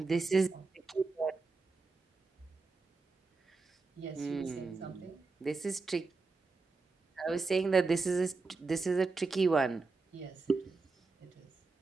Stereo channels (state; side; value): quieter; left; 4.0 dB